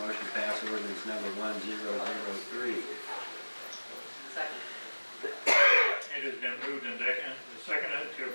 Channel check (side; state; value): both; inverted; correlation -1.00